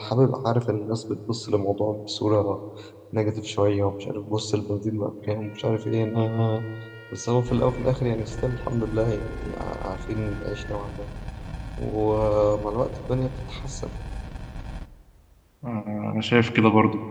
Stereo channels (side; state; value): both; identical; correlation 1.00